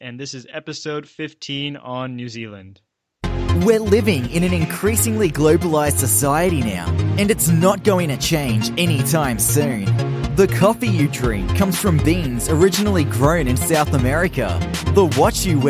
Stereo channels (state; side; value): identical; both; correlation 1.00